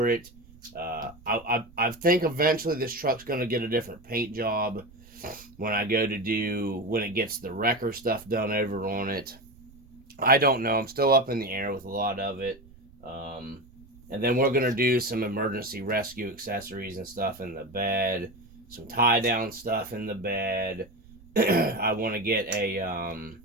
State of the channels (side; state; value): right; noise; rumble, 24 dB below the sound